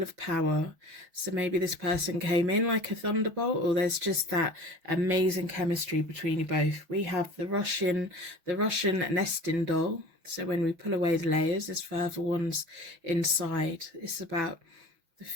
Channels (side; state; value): left; late; 6.1 ms